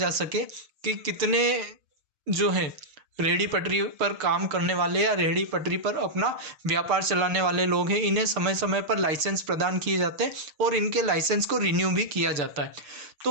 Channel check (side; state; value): left; late; 6.8 ms